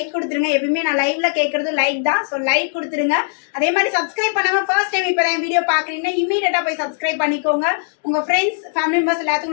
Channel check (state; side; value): silent; right; digital silence